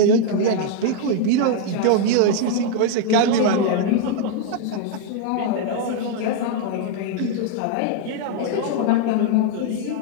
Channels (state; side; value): different; both; correlation 0.00